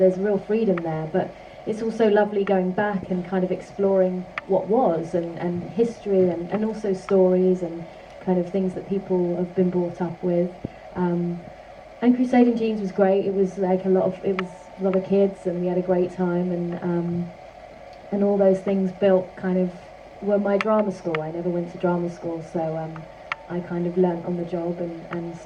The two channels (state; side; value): identical; both; correlation 1.00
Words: real freedom there, but it's also lovely going back and kind of exploring what was, and history, and also stories and kind of things that people have been brought up with. And Crusading Jeans was great. It was like a lot of kids, and we had a great time, and all those things built kind of were my drama school. I never went to drama school, so I kind of learnt on the job, and